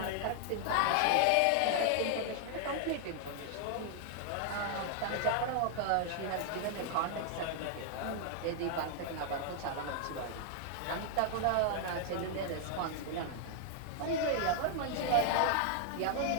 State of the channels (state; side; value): different; both; correlation 0.00